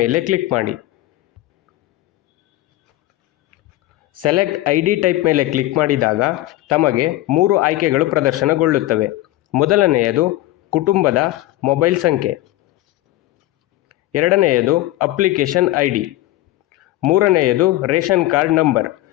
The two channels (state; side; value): quieter; right; 16.0 dB